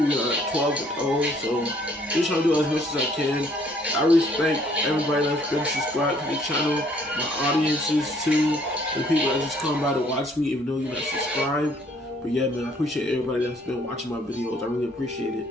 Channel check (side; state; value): both; normal; correlation 0.62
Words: We are 12-0. So just trying to do as much as I can. I respect everybody that's been subscribed to the channel, my audiences too, the people that just come by to watch me even though you're not subscribed. But yeah, man, I appreciate everybody that's been watching my videos. I really appreciate it.